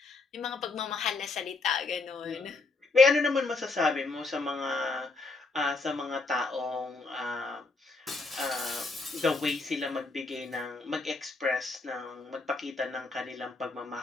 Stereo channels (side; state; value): right; quieter; 3.6 dB